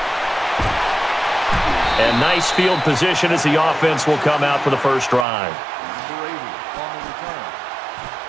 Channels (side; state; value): left; drops out; at 5.2 s